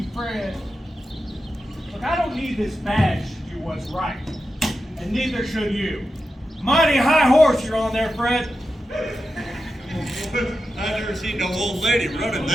Fred. Look, I don't need this badge to do what's right. And neither should you. Mighty high horse you're on there, Fred. I've never seen no old lady running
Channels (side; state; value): both; normal; correlation 0.90